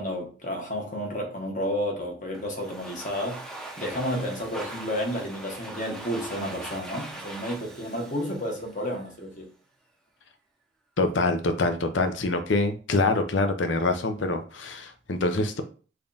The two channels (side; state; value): both; normal; correlation 0.20